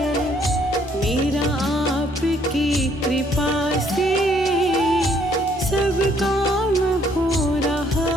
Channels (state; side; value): normal; both; correlation 0.66